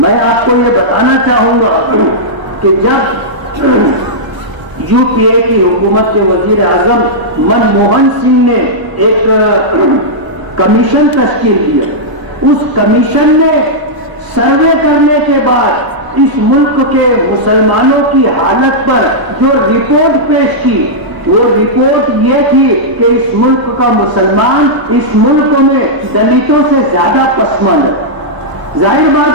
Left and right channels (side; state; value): left; late; 1.0 ms